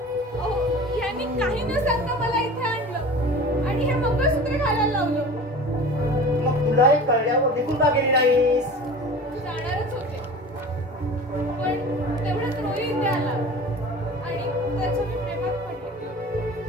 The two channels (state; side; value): normal; both; correlation 0.39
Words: अहो यांनी काही न सांगता मला इथे आणलं आणि हे मंगळसूत्र घालायला लावलं. मग तुलाही कळल्यावर निघून का गेली नाहीस? जाणारच होते पण तेवढ्यात रोही इथे आला आणि त्याच्या मी प्रेमात पडले.